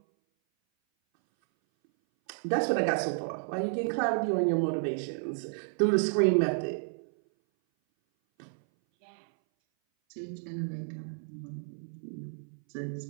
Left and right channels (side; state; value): left; silent; 57 dB below the other